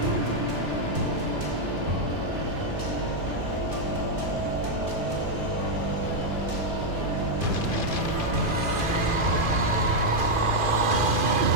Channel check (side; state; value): left; late; 2.5 ms